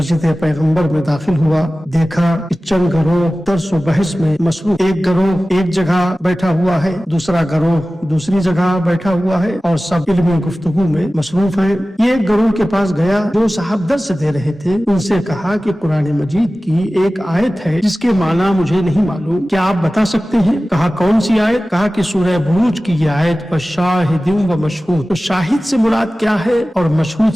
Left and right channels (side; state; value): both; normal; correlation 0.96